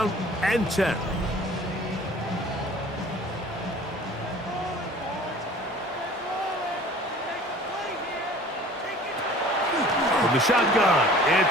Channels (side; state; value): both; normal; correlation 0.47